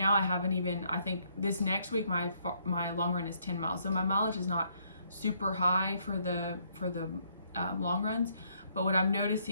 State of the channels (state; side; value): inverted; both; correlation -0.70